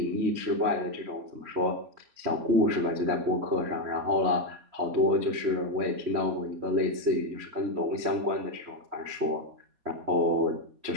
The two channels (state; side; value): late; left; 3.1 ms